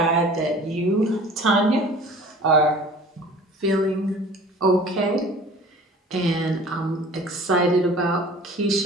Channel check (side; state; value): both; normal; correlation 0.45